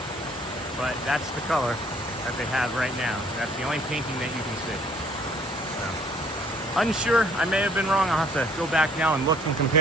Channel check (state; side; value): normal; both; correlation 0.58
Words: but that's the color that they have right now. That's the only painting that you can see. So, unsure. I may have been wrong. I'll have to go back now and look and